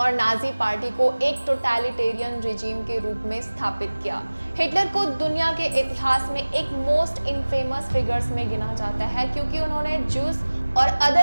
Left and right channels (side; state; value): both; inverted; correlation -1.00